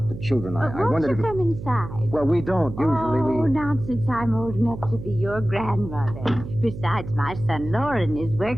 children. I Won't wondered you if... come inside? Well, we don't. Usually Oh, we... nonsense. I'm old enough to be your grandmother. Besides, my son Lauren is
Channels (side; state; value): right; noise; hum, 10 dB below the sound